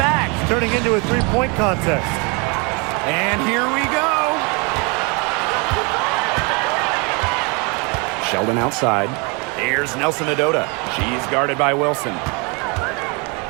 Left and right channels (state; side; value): quieter; left; 31.0 dB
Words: It's turning into a 3-point contest. And here we go. Sheldon outside. Here's Nelson Adota. She's guarded by Wilson.